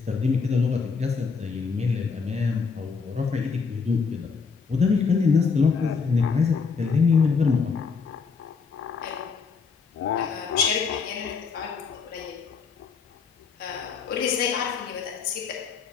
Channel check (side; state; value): right; quieter; 5.3 dB